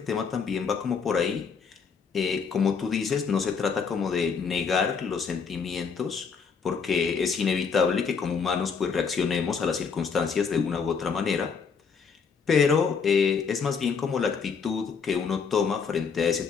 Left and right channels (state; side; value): quieter; right; 5.8 dB